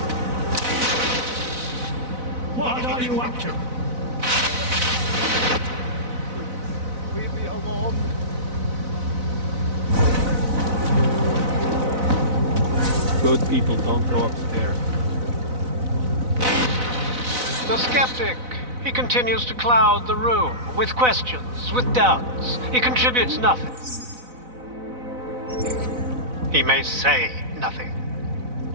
What are you up to? Leave me alone. Good people don't go upstairs. The skeptic. He continues to cloud the room with questions, with doubts. He contributes nothing. He may say nothing.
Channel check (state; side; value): late; left; 4.0 ms